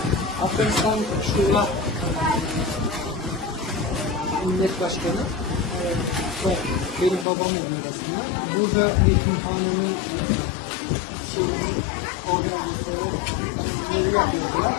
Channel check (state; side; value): drops out; right; at 7.2 s